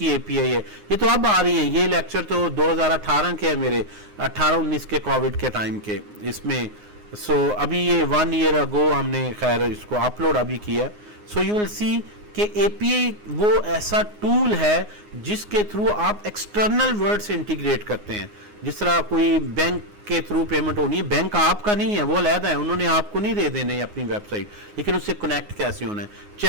API है ये तो अब आ रही है, ये लेक्चर तो 2018 के है मेरे, 18-19 के कोविड के टाइम के इसमें। सो अभी ये 1 ईयर अगो हमने खैर इसको अपलोड अभी किया। सो यू विल सी कि API वो ऐसा टूल है जिसके थ्रू आप एक्सटर्नल वर्ड से इंटीग्रेट करते हैं। जिस तरह कोई बैंक के थ्रू पेमेंट होनी है, बैंक आपका नहीं है, वो अलहदा है, उन्होंने आपको नहीं दे देने अपनी वेबसाइट, लेकिन उससे कनेक्ट कैसे होना है,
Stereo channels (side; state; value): left; late; 9.6 ms